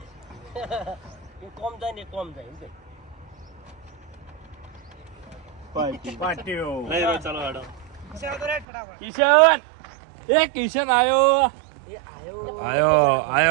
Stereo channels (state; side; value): drops out; left; at 8.7 s